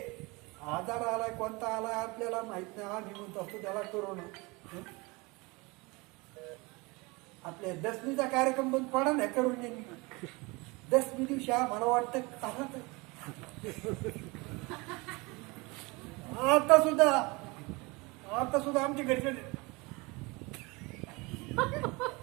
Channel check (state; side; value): quieter; left; 25.6 dB